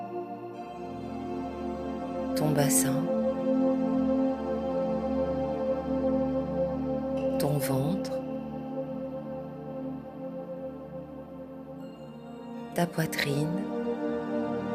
Ton bassin. Ton ventre. Ta poitrine.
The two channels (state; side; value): identical; both; correlation 1.00